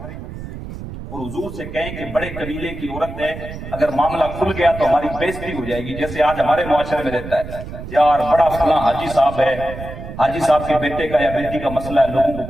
اور حضور سے کہیں کہ بڑے قبیلے کی عورت ہے، اگر معاملہ کھل گیا تو ہماری بےزتی ہو جائے گی، جیسے آج ہمارے معاشرے میں رہتا ہے، یار بڑا فلاں حاجی صاحب ہے، حاجی صاحب کے بیٹے کا یا بیٹی کا مسئلہ ہے، لوگوں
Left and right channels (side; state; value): right; noise; rumble, 10 dB below the sound